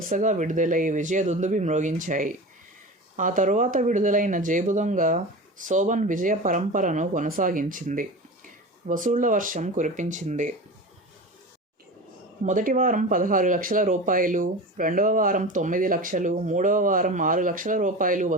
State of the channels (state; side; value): normal; both; correlation 0.30